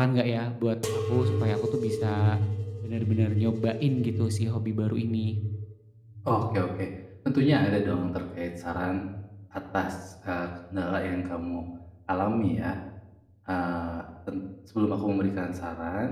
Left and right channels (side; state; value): both; identical; correlation 1.00